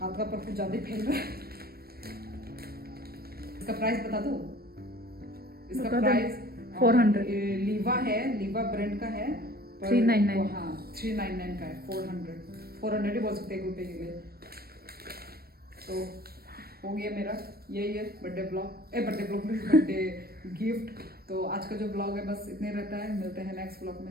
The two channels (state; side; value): late; left; 0.44 ms